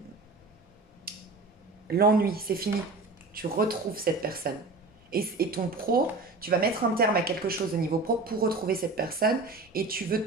L'ennui, c'est fini. Tu retrouves cette personne. Et ton pro, tu vas mettre un terme à quelque chose au niveau pro pour retrouver cette personne et tu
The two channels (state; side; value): quieter; left; 3.6 dB